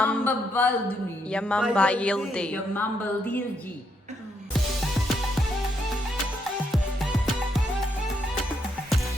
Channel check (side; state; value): both; normal; correlation 0.77